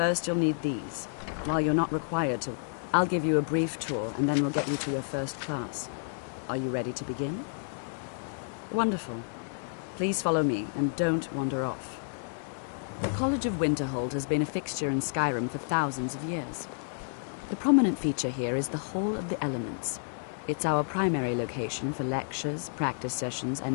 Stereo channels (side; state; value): right; silent; 58 dB below the other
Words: you'll need these. While you're not required to, I'll give you a brief tour and then we'll get you to your first class. Are you ready to begin? Wonderful. Please follow me and don't wander off. The College of Winterhold has been a fixture in Skyrim for thousands of years. The prominent feature here is the Hall of the Elements. It's our primary location for lectures, practice sessions,